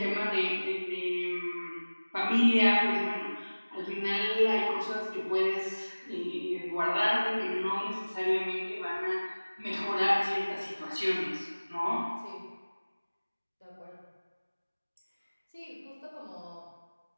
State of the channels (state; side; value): inverted; both; correlation -1.00